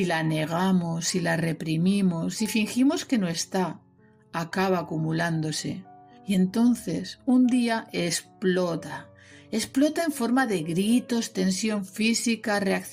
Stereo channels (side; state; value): both; identical; correlation 1.00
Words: la negamos, si la reprimimos, si fingimos que no está, acaba acumulándose. Y entonces un día explota en forma de gritos, tensión física,